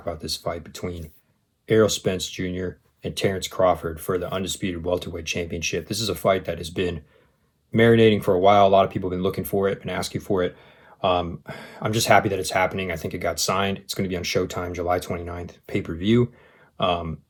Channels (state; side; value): identical; both; correlation 1.00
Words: about this fight between Errol Spence Jr. and Terence Crawford for the undisputed welterweight championship. This is a fight that has been marinating for a while. A lot of people have been looking for it and asking for it. Um, I'm just happy that it's happening. I think it got signed. It's going to be on Showtime July 29th, pay-per-view. Um,